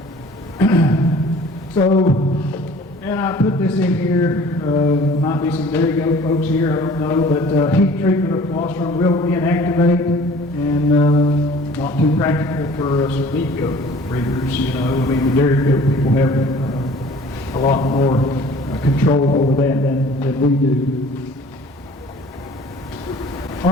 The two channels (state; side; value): normal; both; correlation 0.49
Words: So, and I put this in here, might be some dairy goat folks here, I don't know, but heat treatment of colostrum will inactivate and not too practical for some meat goat breeders, I mean the dairy goat people have a lot more control over that than we do. All